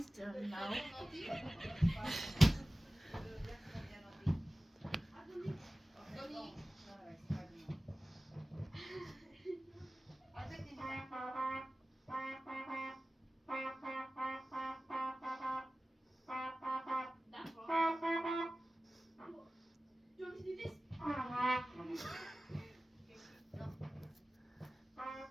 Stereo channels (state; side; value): normal; both; correlation 0.97